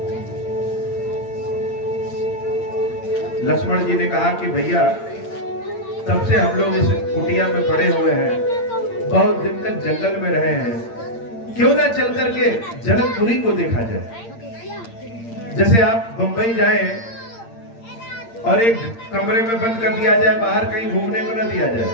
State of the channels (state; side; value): late; right; 8.7 ms